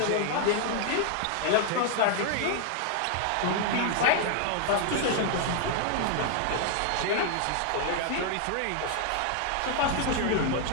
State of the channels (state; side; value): different; both; correlation 0.00